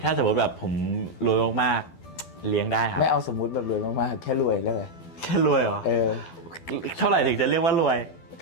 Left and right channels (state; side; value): late; right; 12 ms